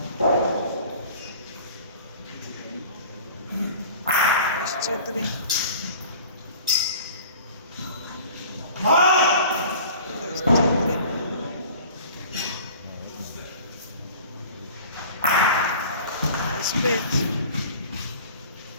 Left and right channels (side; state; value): both; inverted; correlation -0.44